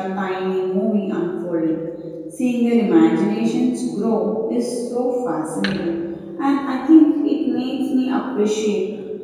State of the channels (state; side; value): identical; both; correlation 1.00